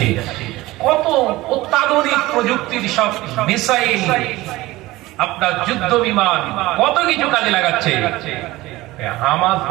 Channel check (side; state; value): left; quieter; 18.7 dB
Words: কত অত্যাধুনিক প্রযুক্তির সব মিসাইল, আপনার যুদ্ধ বিমান, কত কিছু কাজে লাগাচ্ছে। হামাস